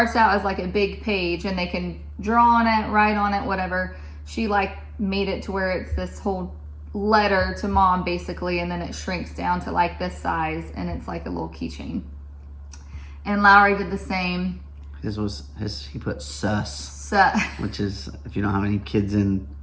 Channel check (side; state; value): both; identical; correlation 1.00